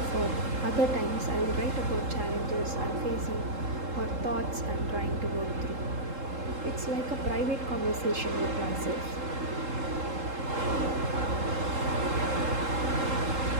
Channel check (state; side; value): late; left; 3.7 ms